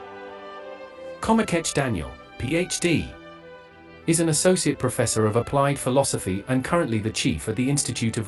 Komikech Daniel, Ph.D. is an associate professor of applied philosophy and currently the chief at the Institute of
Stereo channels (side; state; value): both; identical; correlation 1.00